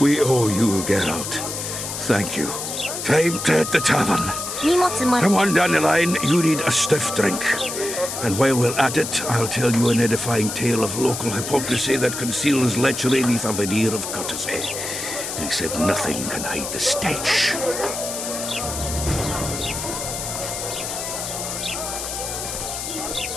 owe you, Geralt. Thank you. Time to hit the tavern. Come on, Dandelion, you need a stiff drink. And while we're at it, I'll tell you an edifying tale of local hypocrisy that conceals lechery beneath a veneer of courtesy. Except nothing can hide the stench.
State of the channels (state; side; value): noise; left; hiss, 5 dB below the sound